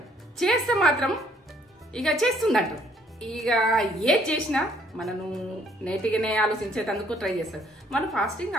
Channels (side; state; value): both; normal; correlation 0.64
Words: చేస్తే మాత్రం ఇక చేస్తుంది అంటారు. ఇక ఏది చేసినా మనను నేటిగానే ఆలోచించేందుకు ట్రై చేస్తారు. మనం ఫాస్టింగ్